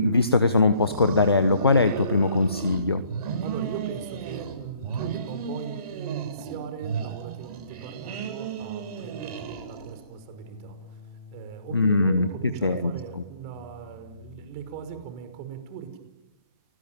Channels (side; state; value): both; inverted; correlation -0.62